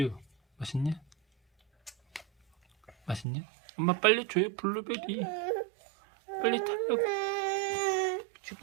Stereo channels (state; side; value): drops out; left; at 3.2 s